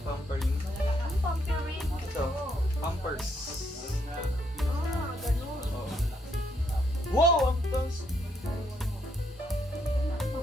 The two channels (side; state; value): both; normal; correlation 0.74